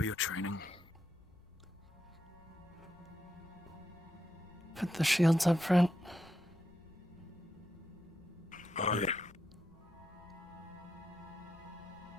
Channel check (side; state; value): left; noise; rumble, 27 dB below the sound